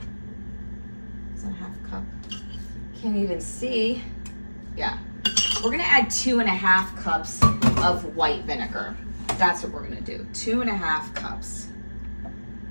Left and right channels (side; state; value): both; inverted; correlation -1.00